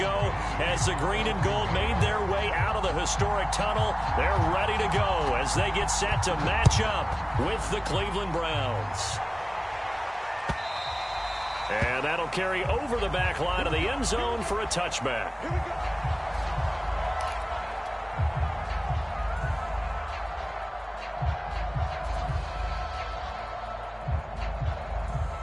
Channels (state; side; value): identical; both; correlation 1.00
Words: as the green and gold made their way out of the historic tunnel. They're ready to go as they get set to match up with the Cleveland Browns. And that'll carry over the back line of the end zone for a touchback. Here we go.